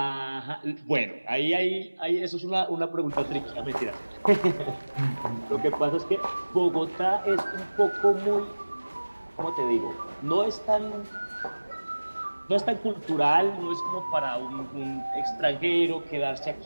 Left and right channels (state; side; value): inverted; both; correlation -1.00